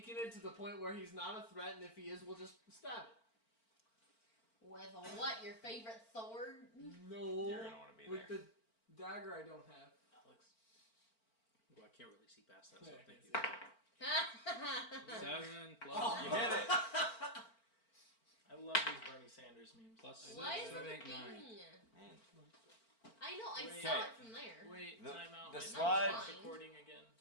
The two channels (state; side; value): late; right; 4.4 ms